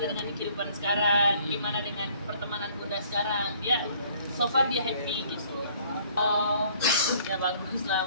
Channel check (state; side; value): inverted; both; correlation -0.58